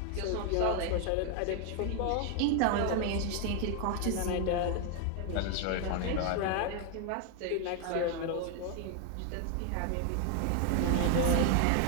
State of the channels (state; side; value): different; both; correlation 0.00